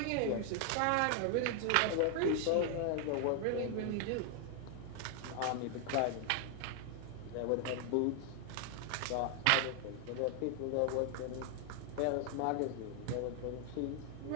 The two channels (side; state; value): both; different; correlation 0.00